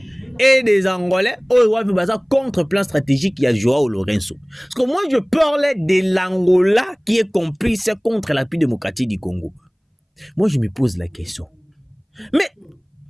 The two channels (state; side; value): identical; both; correlation 1.00